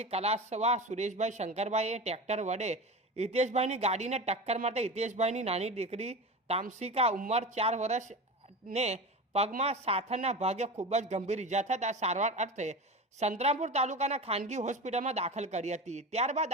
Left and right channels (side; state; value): both; normal; correlation 0.29